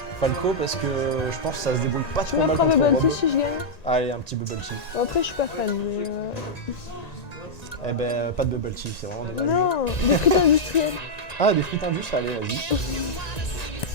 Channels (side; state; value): right; late; 1.9 ms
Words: Falco parce que je pense que ça se débrouille pas Tu trop mal m'offres un contre bubble Rob. tea si je gagne? Allez, un petit bubble tea. Bon, après je suis pas fan, mais Eh ben, pas de bubble tea, c'est vraiment dommage. Non, des frites industrielles. Ah, des frites indus, allez, vas-y.